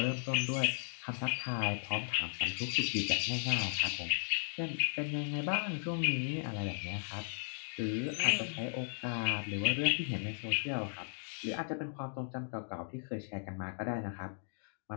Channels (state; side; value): silent; right; digital silence